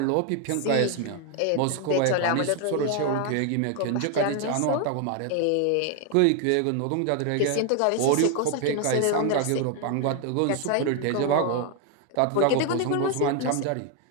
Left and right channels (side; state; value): both; different; correlation 0.01